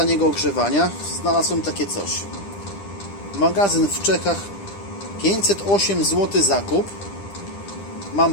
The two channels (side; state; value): right; late; 10 ms